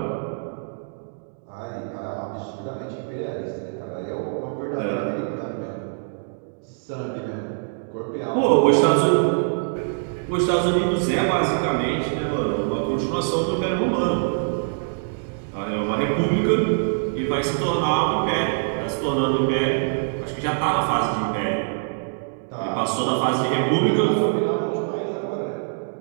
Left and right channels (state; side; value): silent; left; digital silence